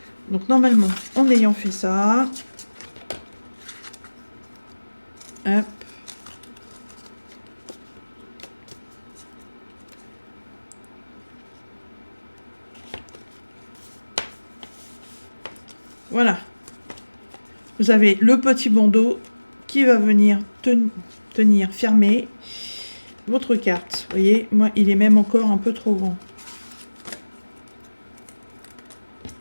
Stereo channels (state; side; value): inverted; both; correlation -1.00